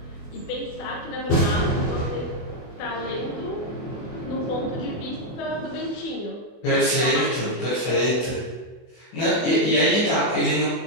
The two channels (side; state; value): right; late; 24 ms